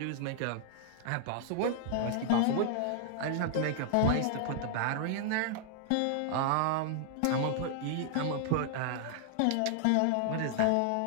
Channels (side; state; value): both; different; correlation -0.01